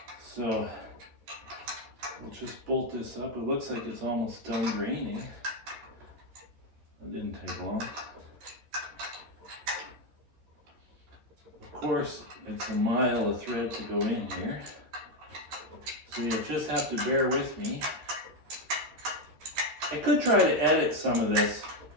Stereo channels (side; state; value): left; late; 13 ms